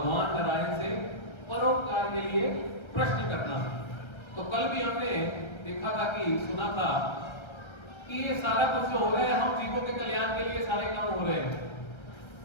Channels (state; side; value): late; right; 1.3 ms